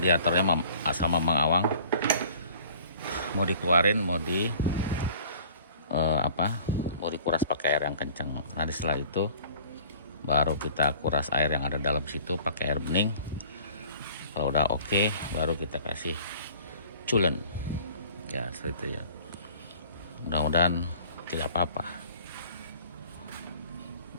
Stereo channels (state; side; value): inverted; both; correlation -0.51